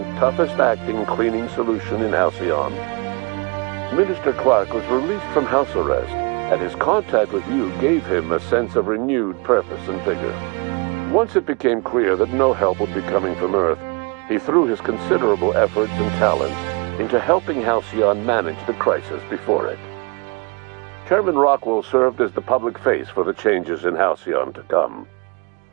toughest-acting cleaning solution in Halcyon? Minister Clark was released from house arrest, and his contact with you gave him a sense of renewed purpose and vigor. Once it became clear that no help would be coming from Earth, he threw his considerable efforts and talents into helping Halcyon manage the crisis before it. Chairman Rockwell served as the public face for the changes in Halcyon to come.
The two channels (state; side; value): quieter; left; 31.0 dB